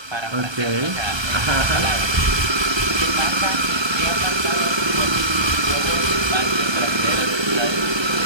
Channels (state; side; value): late; left; 1.3 ms